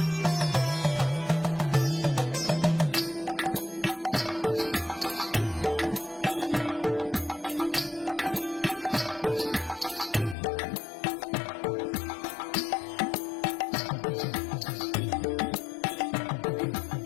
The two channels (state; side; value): drops out; right; at 10.4 s